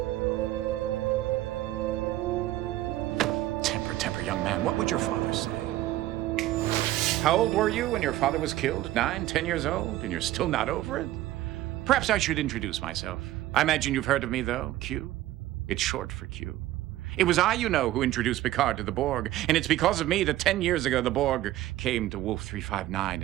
Temper, young man. What would your father say? How old were you when your father was killed? 9, 10 years old? And you're still not over it? Perhaps I should introduce myself. I imagine you've heard of me, though. Q. It's short for Q. It was I, you know, who introduced Picard to the Borg. And it's because of me that 10 years ago the Borg came to Wolf 359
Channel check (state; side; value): quieter; left; 15.0 dB